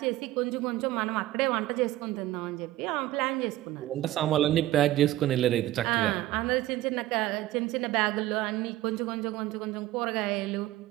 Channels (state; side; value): quieter; left; 15.4 dB